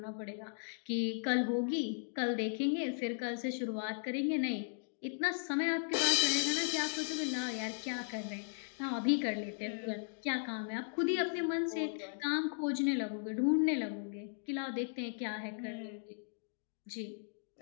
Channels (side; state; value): right; silent; digital silence